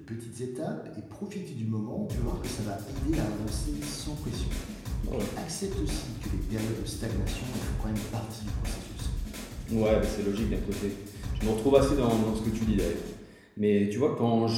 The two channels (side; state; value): both; identical; correlation 1.00